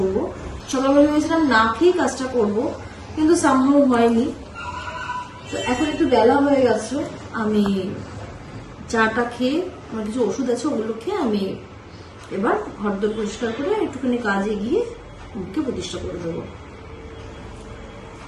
সকালবেলা ভেবেছিলাম না খেয়ে কাজটা করব, কিন্তু সামহাও হয়নি। তো এখন একটু বেলা হয়ে গেছে, আমি চাটা খেয়ে, আমার কিছু ওষুধ আছে ওগুলো খেয়ে আমি এবার ঘরদোর পরিষ্কার করে একটুখানি কাজে গিয়ে মুখকে প্রতিষ্ঠা করে দেবো।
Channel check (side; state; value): both; identical; correlation 1.00